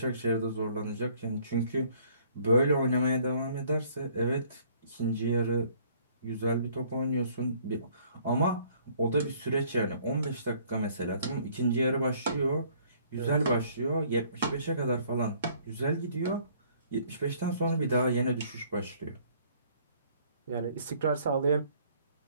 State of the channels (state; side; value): inverted; both; correlation -0.59